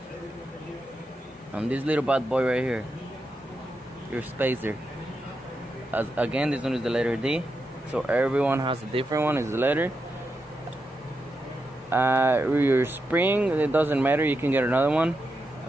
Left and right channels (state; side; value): normal; both; correlation 0.86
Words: and this little bad boy right here, your spacer. Again, this one is the letter D, so everyone has a different one. Is the letter. Your spring, it doesn't matter, you can get another one.